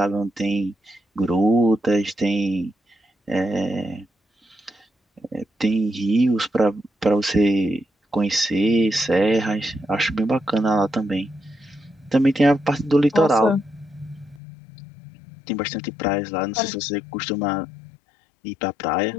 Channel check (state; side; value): drops out; right; at 14.4 s